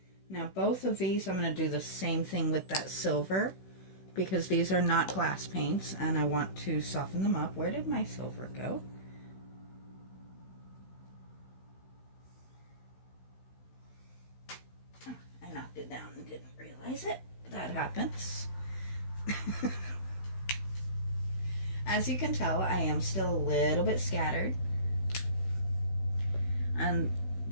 Now, both of these, I'm going to do the same thing with that silver, because these are not glass paints, and I want to soften them up. Where did my silver go? Oh, I knocked it down and didn't realize it. That happens. As you can tell, I am still a little bit scattered, and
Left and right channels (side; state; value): right; late; 16 ms